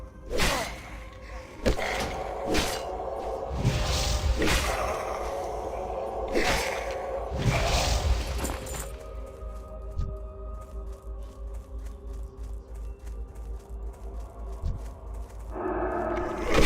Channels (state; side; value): identical; both; correlation 1.00